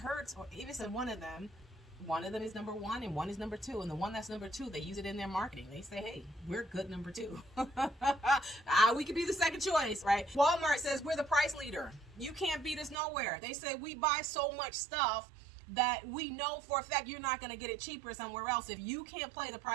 or Avis and one of them. One of them is number 1 and one is number 2. And the one that's number 2, they use it in their marketing. They say, hey, we're good number 2. We could be the second choice, right? Walmart says we're the price leader. You can't beat us nowhere. They say we buy so much stuff that we know for a fact you're not going to get it cheaper somewhere else. If you can't play the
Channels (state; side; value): drops out; left; at 13.0 s